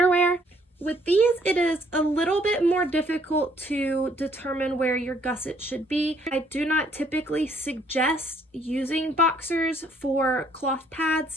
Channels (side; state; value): both; normal; correlation 0.65